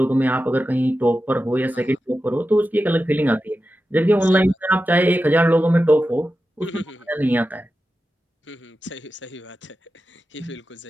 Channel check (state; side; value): normal; both; correlation 0.92